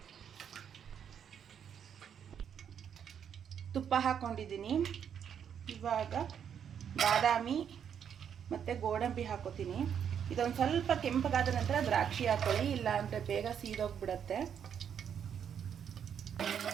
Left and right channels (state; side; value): quieter; left; 8.2 dB